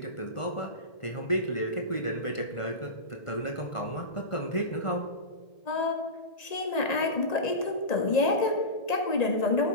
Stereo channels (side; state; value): right; late; 1.9 ms